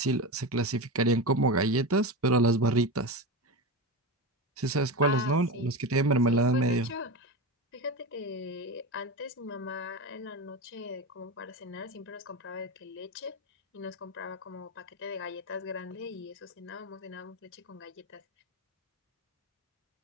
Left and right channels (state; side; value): normal; both; correlation 0.21